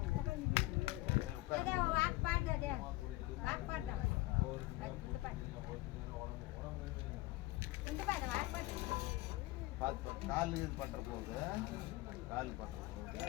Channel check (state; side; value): quieter; right; 19.5 dB